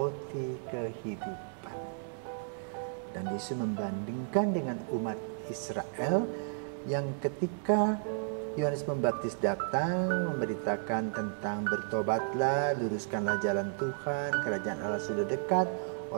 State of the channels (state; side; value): silent; left; digital silence